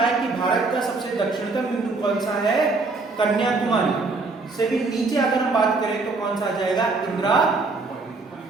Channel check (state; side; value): quieter; left; 3.7 dB